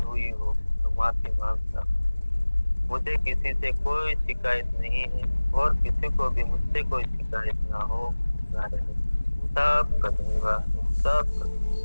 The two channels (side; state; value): both; inverted; correlation -1.00